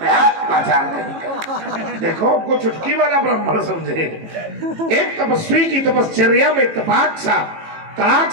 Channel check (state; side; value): late; left; 18 ms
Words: है। आचार कहीं देखो, हमको चुटकी वाला ब्राह्मण समझे। एक तपस्वी की तपश्चर्या में तपाक सा तड़ाक